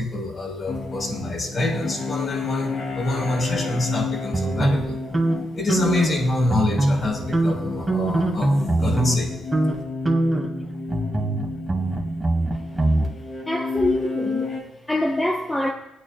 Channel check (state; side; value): normal; both; correlation 0.85